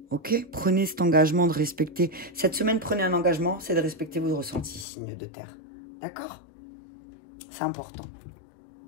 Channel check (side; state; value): right; drops out; at 4.9 s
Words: Ok? Prenez cet engagement de respecter. Cette semaine, prenez un engagement, c'est de respecter vos ressentis, signe de terre. D'accord? C'est important.